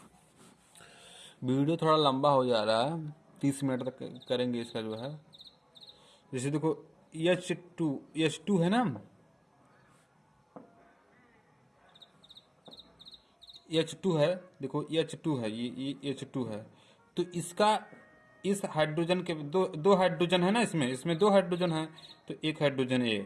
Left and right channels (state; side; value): identical; both; correlation 1.00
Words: वीडियो थोड़ा लंबा हो जा रहा है, 30 मिनट तक करेंगे इसका जो है। जैसे देखो H2 है ना, H2 है, देखो H2 है, ये H2 है। तो इसका, इस हाइड्रोजन के दो हाइड्रोजन है ना, इसमें 2 हाइड्रोजन है, तो एक हाइड्रोजन ए,